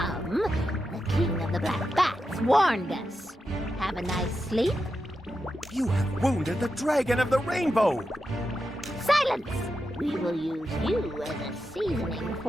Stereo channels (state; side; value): normal; both; correlation 0.88